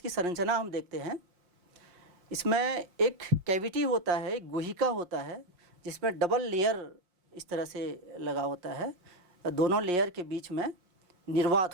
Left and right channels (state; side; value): late; left; 5.6 ms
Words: संरचना हम देखते हैं। इसमें एक कैविटी होता है, एक गुहिका होता है, जिसमें डबल लेयर इस तरह से लगा होता है। दोनों लेयर के बीच में